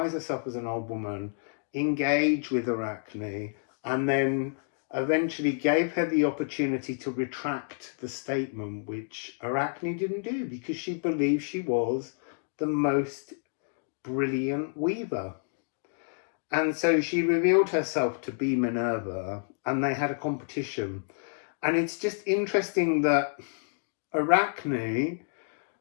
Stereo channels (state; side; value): silent; right; digital silence